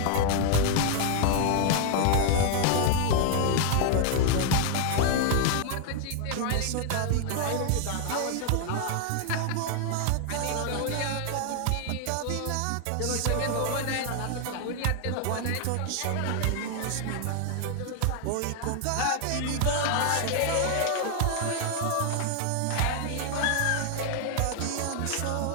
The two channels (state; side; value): different; both; correlation 0.00